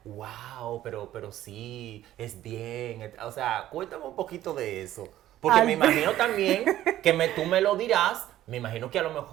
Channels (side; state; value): left; quieter; 13.4 dB